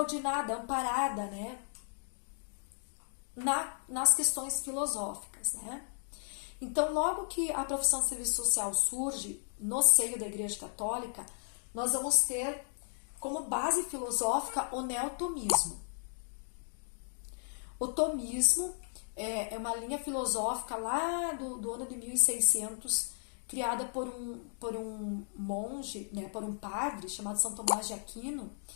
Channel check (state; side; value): silent; right; digital silence